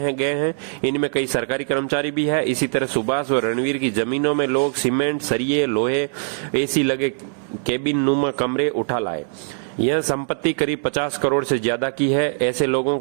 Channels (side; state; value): left; silent; 64 dB below the other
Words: गए हैं। इनमें कई सरकारी कर्मचारी भी है। इसी तरह सुभाष और रणवीर की जमीनों में लोग सीमेंट, सरिये, लोहे, AC लगे केबिन नुमा कमरे उठा लाए। यह संपत्ति करीब 50 करोड़ से ज्यादा की है। ऐसे लोगों